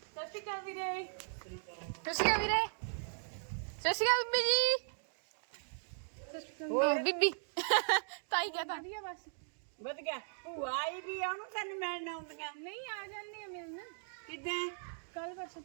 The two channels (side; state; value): left; silent; digital silence